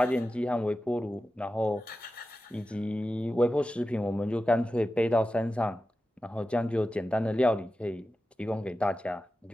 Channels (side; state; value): both; normal; correlation 0.93